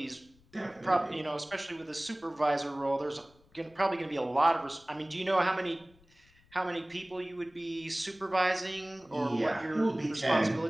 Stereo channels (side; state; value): left; noise; rumble, 29 dB below the sound